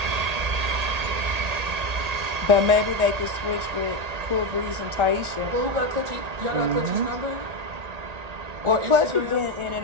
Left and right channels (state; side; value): late; left; 1.8 ms